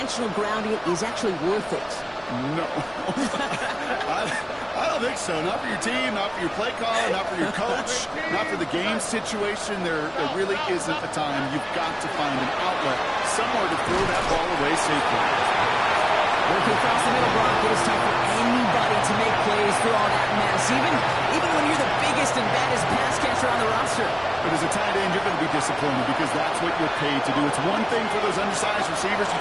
grounding is actually worth it? No. I don't think so. Not for your team, not for your play caller, not for your coach, not for the game situation. There really isn't a time. You've got to find an outlet, somewhere to throw that ball away safely. Working across the middle, Brock, it is tough for anybody to make plays through all that mess, even when you're the biggest and baddest pass catcher on the roster. But as a tight end, you're going to be disappointed because that's what you're paid to do. It's one thing for those undersized receivers you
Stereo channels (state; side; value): identical; both; correlation 1.00